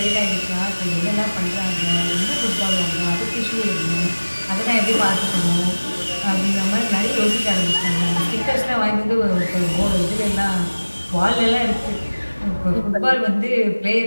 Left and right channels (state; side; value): inverted; both; correlation -1.00